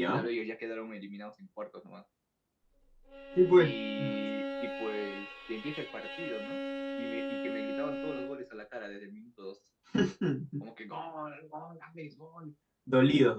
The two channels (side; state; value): both; identical; correlation 1.00